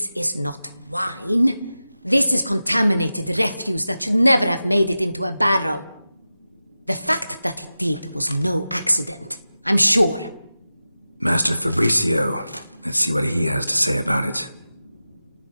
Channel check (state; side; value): inverted; both; correlation -0.94